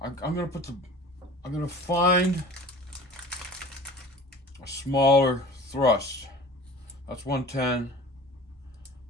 I'm gonna find a smaller thrust. That's 110.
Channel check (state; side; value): normal; both; correlation 0.41